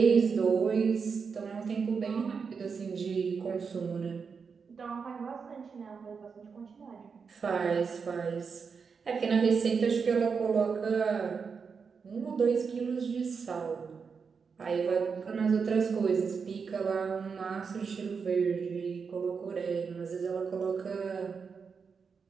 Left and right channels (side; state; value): left; quieter; 5.7 dB